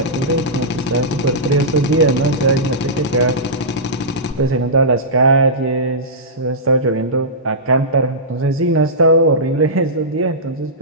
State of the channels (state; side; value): normal; both; correlation -0.15